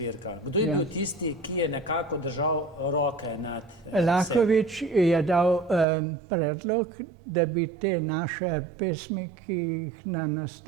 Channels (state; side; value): drops out; left; at 5.9 s